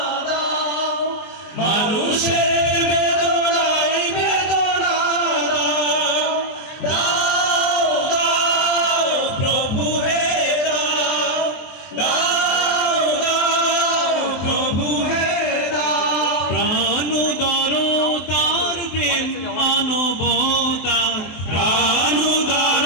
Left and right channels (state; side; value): late; right; 23 ms